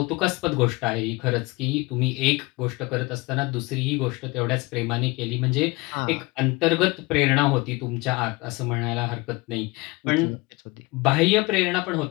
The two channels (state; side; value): quieter; right; 24.3 dB